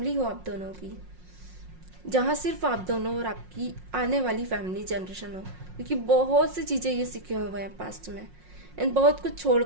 हो आप दोनों की, जहां सिर्फ आप दोनों और आपकी आने वाली फैमिली जनरेशन हो, क्योंकि बहुत सी चीजें ये सीखे हुए हैं पास्ट में एंड बहुत कुछ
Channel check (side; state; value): left; late; 5.5 ms